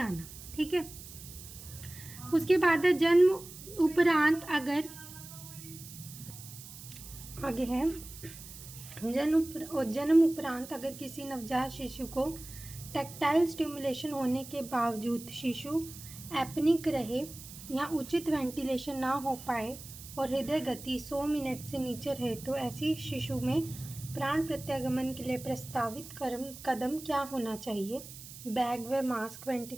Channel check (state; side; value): noise; right; hiss, 15 dB below the sound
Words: ठीक है। उसके बाद है जन्म उपरांत अगर आगे है जन्म उपरांत अगर किसी नवजात शिशु को टैक्टाइल स्टिमुलेशन होने के बावजूद शिशु एपनिक रहे या उचित वेंटिलेशन ना हो पाए और हृदय गति 100 मिनट से नीचे रहे, तो ऐसी शिशु में प्राण प्रत्यागमन के लिए प्रस्तावित कदम क्या होना चाहिए? बैग व mask